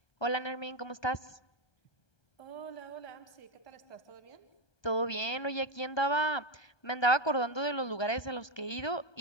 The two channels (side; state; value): right; late; 1.2 ms